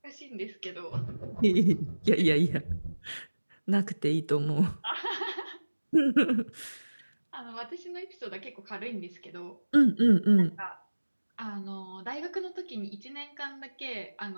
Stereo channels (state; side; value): inverted; both; correlation -1.00